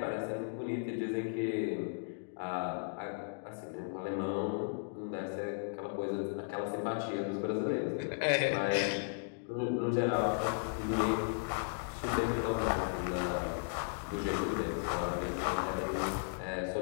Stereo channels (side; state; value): right; silent; digital silence